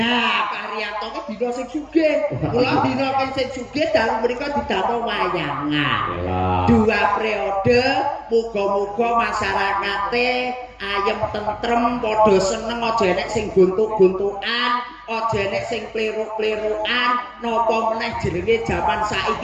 Pak Haryanto ki dina sing sugih. Kula dina sing sugih dalu mriku didamel wayangan. Yalah. 2 periode, muga-muga masyarakate ayem tentrem, padha seneng, aja enek sing guntuk-guntukan, aja enek sing pliruk-plirukan, napa meneh jenenge jaman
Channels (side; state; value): both; identical; correlation 1.00